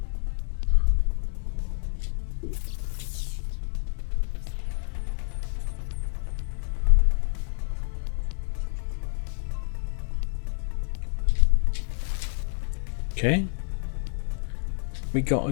Okay. We gotta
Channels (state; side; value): silent; right; 60 dB below the other